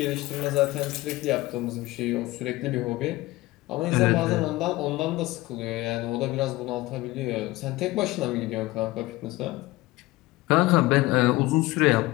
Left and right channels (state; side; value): quieter; right; 19.2 dB